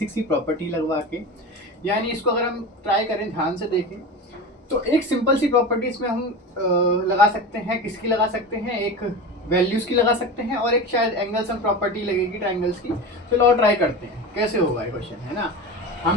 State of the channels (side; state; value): both; normal; correlation 0.28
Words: सी प्रॉपर्टी लगवा के, यानी इसको अगर हम ट्राई करें, ध्यान से देखें, तो एक सिंपल सी प्रॉपर्टी इसमें हम लगा सकते हैं। किसकी लगा सकते हैं? एक वैल्यूज की लगा सकते हैं, और एक शायद एंगल्स हम प्रॉपर्टी लगेगी ट्राइंगल्स की। चलो और ट्राई करते हैं कैसे होगा ये क्वेश्चन, है ना।